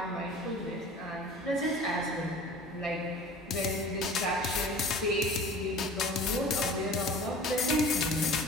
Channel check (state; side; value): normal; both; correlation 0.43